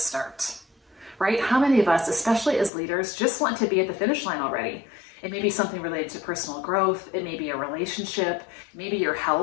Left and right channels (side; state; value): right; drops out; at 2.7 s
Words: right? How many of us, especially as leaders, just want to be at the finish line already? It may be something related to personal growth. It may be a relationship, maybe your